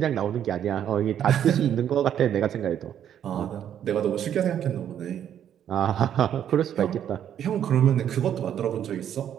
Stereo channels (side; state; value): left; quieter; 9.8 dB